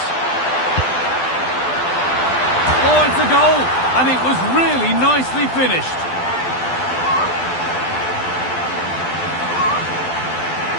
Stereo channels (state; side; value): late; right; 12 ms